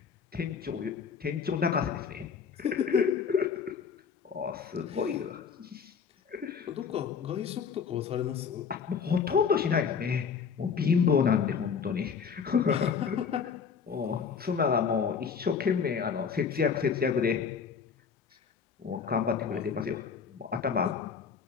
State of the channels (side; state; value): right; quieter; 6.4 dB